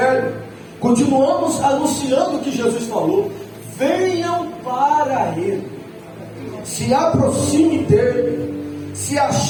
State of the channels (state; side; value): identical; both; correlation 1.00